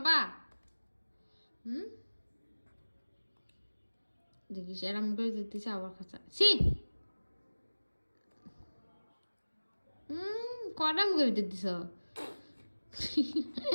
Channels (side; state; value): both; inverted; correlation -1.00